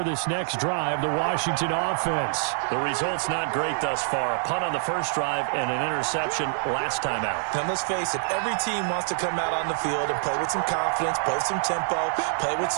this next drive, the Washington offense. The result's not great thus far. A punt on the first drive and an interception last time out. Now, let's face it, every team wants to come out on the field and play with some confidence, play with some tempo, play with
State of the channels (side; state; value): left; silent; digital silence